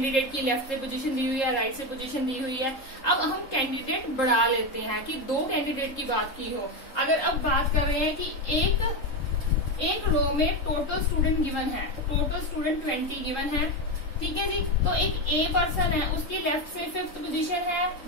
की लेफ्ट से पोजीशन दी हुई है, राइट से पोजीशन दी हुई है। अब हम कैंडिडेट बढ़ा लेते हैं कि 2 कैंडिडेट की बात की हो। अगर अब बात कर रहे हैं कि एक रो में टोटल स्टूडेंट गिवन है, टोटल स्टूडेंट 20 गिवन है, ठीक है जी। तो एक ए पर्सन है, उसकी लेफ्ट से 5th पोजीशन है,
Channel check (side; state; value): right; late; 3.7 ms